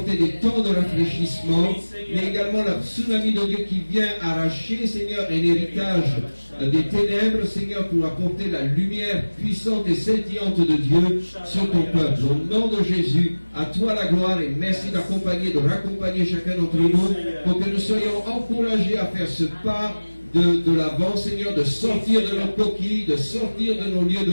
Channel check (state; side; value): inverted; both; correlation -1.00